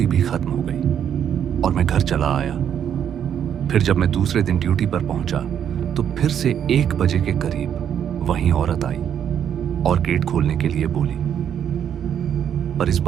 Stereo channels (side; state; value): left; quieter; 9.0 dB